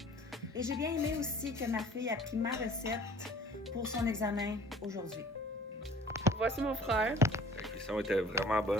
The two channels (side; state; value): both; normal; correlation 0.49